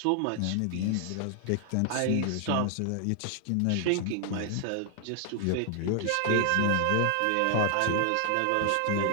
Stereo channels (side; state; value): both; different; correlation 0.00